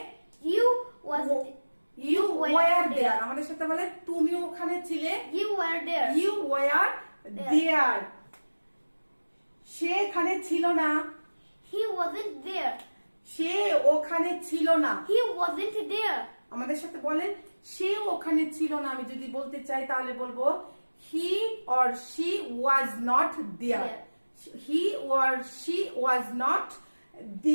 You was You were were there. there. আমাদের সাথে বলেন তুমি ওখানে ছিলে। you were there. You were there. সে এখানে ছিল না। He wasn't there. সে ওখানে ছিল না। He wasn't there. আমাদের সাথে বলেন সে ওখানে ছিল না। আমি যদি বলতে চাই তাহলে বলবো he or she was not there. He or she was not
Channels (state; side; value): inverted; both; correlation -1.00